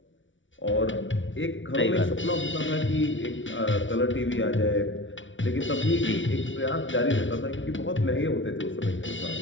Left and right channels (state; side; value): late; right; 0.56 ms